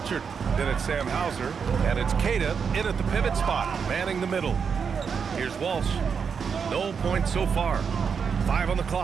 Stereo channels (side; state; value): left; quieter; 6.3 dB